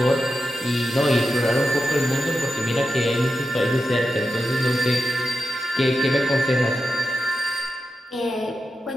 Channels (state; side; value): normal; both; correlation 0.90